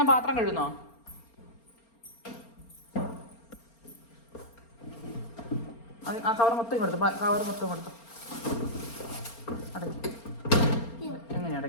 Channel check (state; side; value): late; right; 4.3 ms